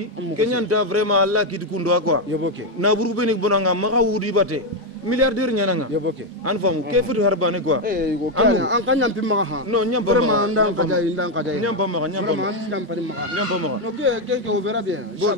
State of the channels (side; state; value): both; normal; correlation 0.05